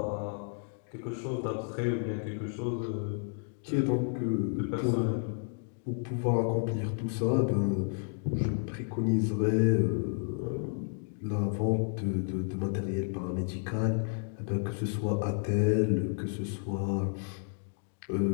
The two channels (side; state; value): right; silent; 57 dB below the other